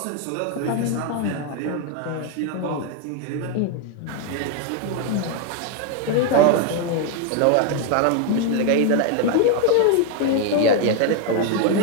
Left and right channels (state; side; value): different; both; correlation 0.01